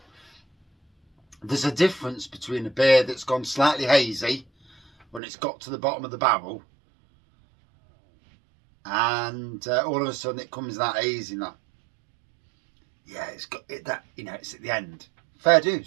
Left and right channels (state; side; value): drops out; left; at 5.2 s